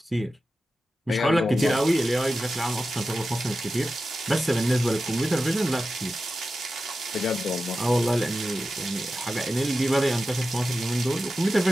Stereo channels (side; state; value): both; normal; correlation 0.92